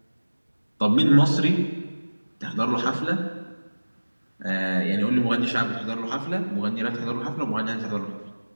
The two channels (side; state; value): both; inverted; correlation -1.00